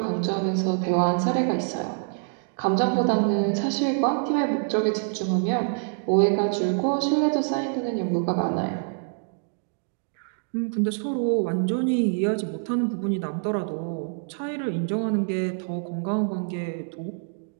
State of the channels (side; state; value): left; silent; 61 dB below the other